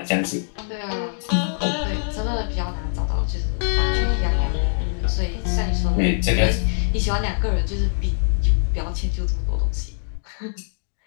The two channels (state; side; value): silent; right; digital silence